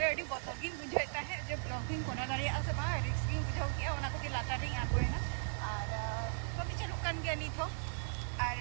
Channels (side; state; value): left; silent; 53 dB below the other